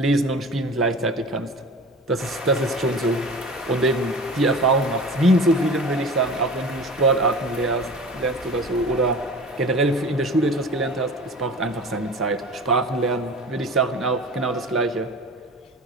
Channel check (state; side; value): normal; both; correlation 0.37